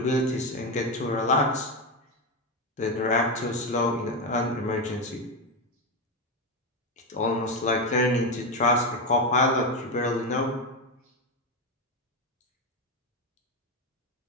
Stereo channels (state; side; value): normal; both; correlation 0.11